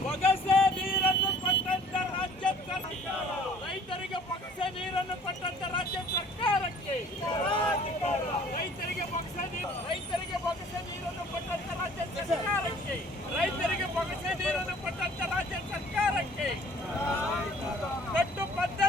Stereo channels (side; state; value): both; normal; correlation 0.53